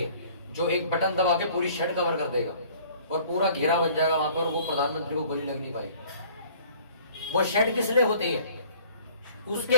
जो एक बटन दबा के पूरी शेड कवर कर देगा और पूरा घेरा बन जाएगा वहां पर, वो प्रधानमंत्री को गोली लग नहीं पाएगी। वो शेड किस लिए होती है?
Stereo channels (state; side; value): inverted; both; correlation -0.53